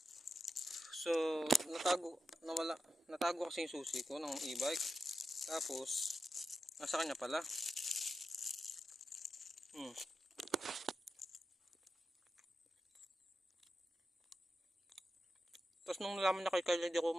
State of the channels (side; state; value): both; normal; correlation 0.89